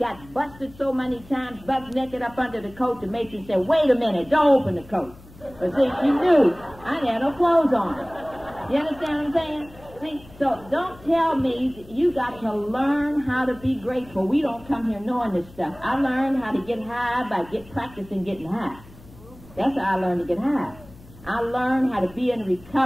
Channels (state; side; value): noise; left; hum, 21 dB below the sound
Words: busted so many times, butt naked up under the coat. The matron said, "Wait a minute, don't open the coat." But see, she knew I had no clothes on. You understand what I'm saying? See, so don't tell me you got to learn how to be grateful. We don't come here knowing this stuff. I learned how to get high by practicing getting high. That's how I learned to get high. I learned how to be in